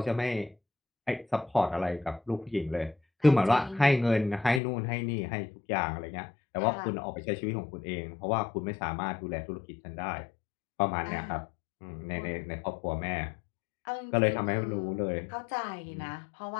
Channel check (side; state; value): right; drops out; at 4.6 s